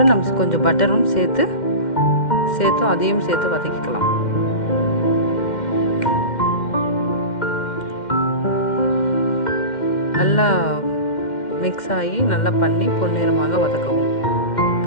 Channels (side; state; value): right; late; 2.1 ms